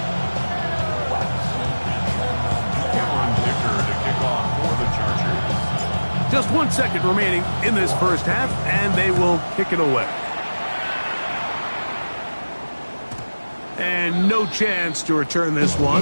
Just 1 second remaining in this first half, and they will kick it away. And no chance to return this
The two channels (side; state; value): both; inverted; correlation -1.00